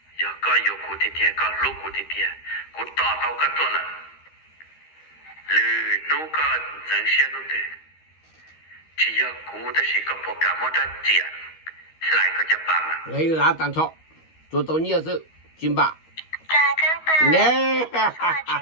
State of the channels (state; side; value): late; right; 13 ms